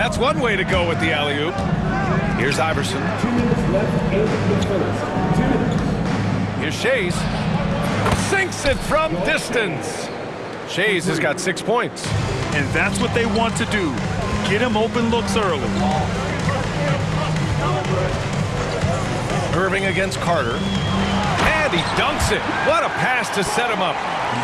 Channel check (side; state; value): both; identical; correlation 1.00